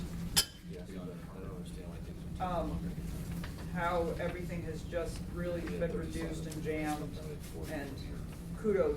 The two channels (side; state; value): both; identical; correlation 1.00